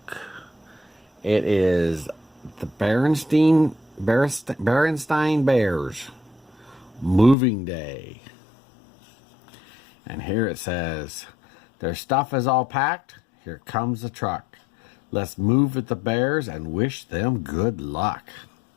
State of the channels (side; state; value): right; drops out; at 7.4 s